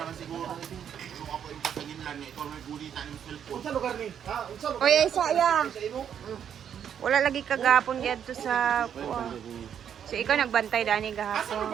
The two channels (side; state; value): left; quieter; 8.7 dB